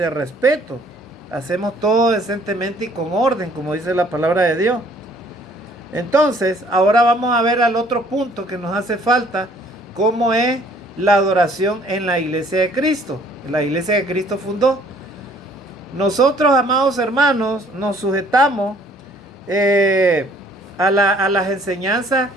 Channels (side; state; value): both; normal; correlation 0.59